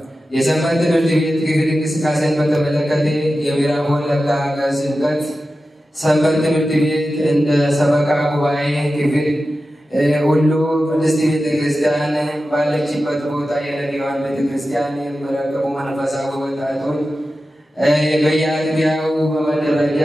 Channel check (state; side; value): normal; both; correlation 0.93